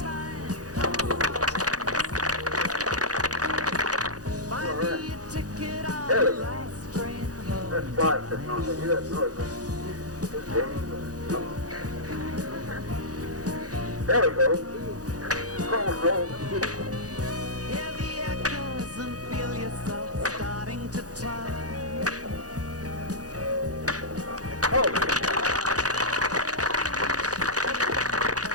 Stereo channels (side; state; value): left; late; 0.67 ms